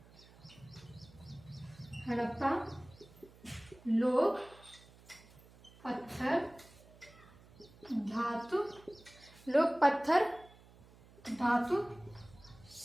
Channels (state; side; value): noise; right; hum, 23 dB below the sound